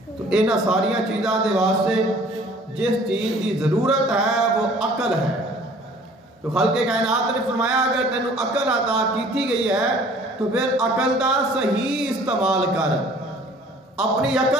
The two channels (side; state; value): both; normal; correlation 0.52